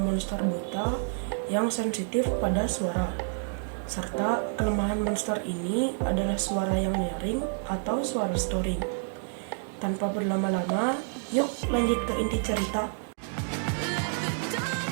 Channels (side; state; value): left; silent; 59 dB below the other